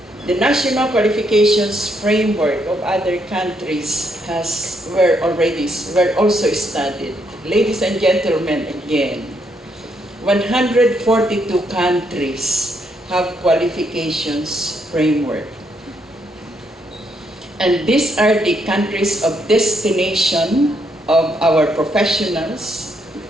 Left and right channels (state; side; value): normal; both; correlation 0.75